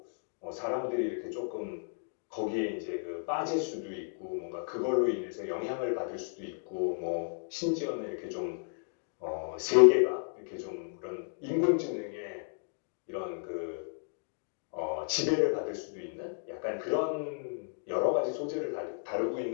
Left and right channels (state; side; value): silent; right; digital silence